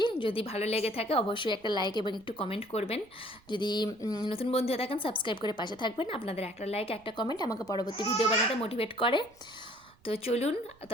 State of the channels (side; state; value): right; noise; rumble, 29 dB below the sound